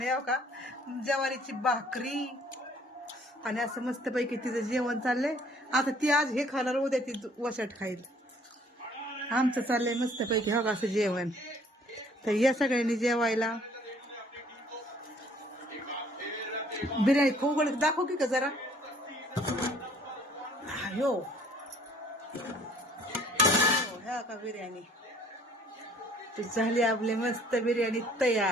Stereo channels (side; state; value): both; normal; correlation 0.58